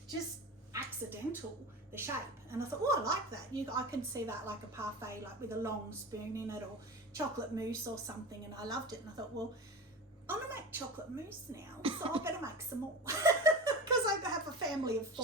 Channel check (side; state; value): both; normal; correlation 0.29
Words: just accidental, the shape, and I thought, oh, I like that. I can see that like a parfait, like with a long spoon in it, or chocolate mousse or something, and I loved it. And I thought, well, I'm gonna make chocolate mousse now, so I better make some more because I have a family of 4.